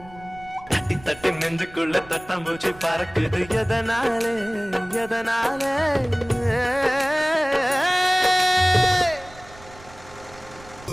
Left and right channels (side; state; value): right; noise; rumble, 21 dB below the sound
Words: தட்டி தட்டி நெஞ்சுக்குள்ள தட்டாம்பூச்சி பறக்குது எதனாலே எதனாலே